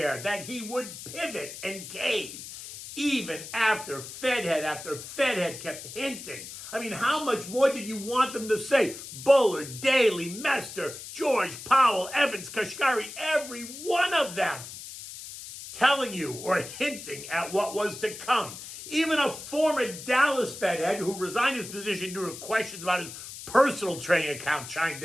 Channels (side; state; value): left; noise; hiss, 12 dB below the sound